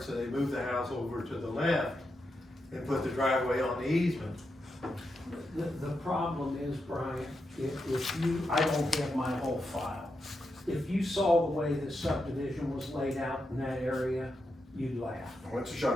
so they moved the house over to the left and put the driveway on the easement. The problem is, Brian, if you, I don't have my whole file. If you saw the way the subdivision was laid out in that area, you'd laugh. Well, it's a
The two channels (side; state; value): both; normal; correlation 0.86